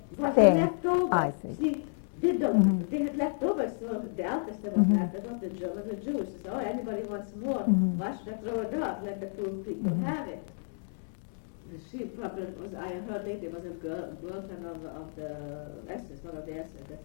Was thing. leftover. I see. See, they had leftovers, so the Altester was nice. That was the German, the Jews. They said, oh, anybody wants more. Why should I throw it out? Let the poor people have it. She probably was, I heard later, was a girlfriend of the SS, one of the SS. That's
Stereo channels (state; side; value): silent; right; digital silence